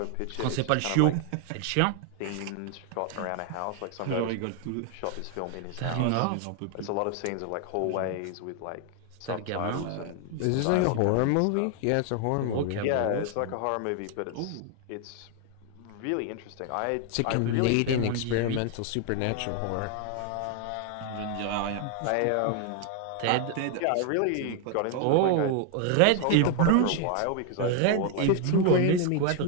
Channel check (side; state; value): both; different; correlation 0.00